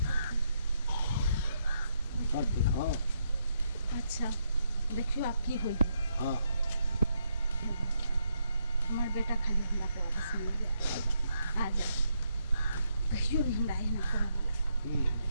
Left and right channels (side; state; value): both; inverted; correlation -0.78